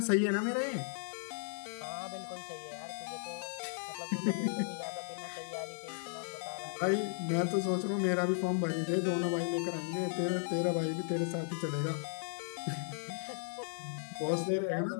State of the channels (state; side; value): silent; right; digital silence